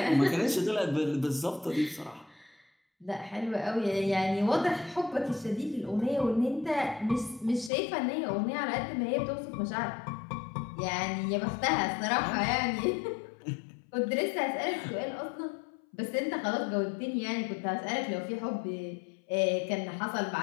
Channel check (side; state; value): right; drops out; at 7.7 s